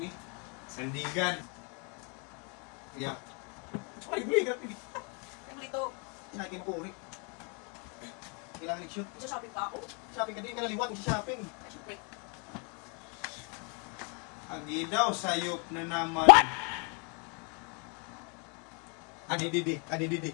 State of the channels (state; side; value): quieter; right; 34.9 dB